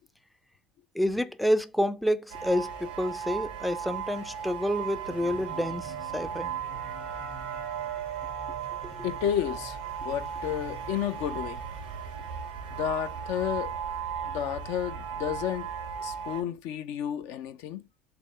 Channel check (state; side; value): normal; both; correlation 0.54